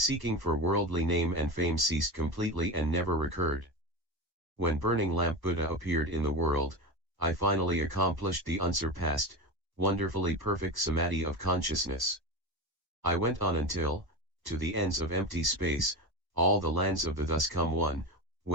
for worldly name and fame ceased completely and never recurred. When Burning Lamp Buddha appeared in the world, I finally accomplished the unsurpassed, wonderfully perfect Samadhi of consciousness. I went on until, to the ends of empty space, all the lands of the thus come one,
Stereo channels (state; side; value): late; left; 1.1 ms